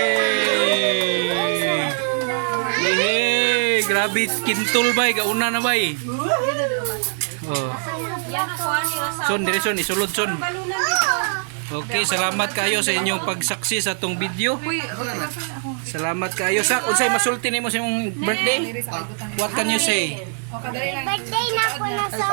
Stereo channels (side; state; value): left; silent; digital silence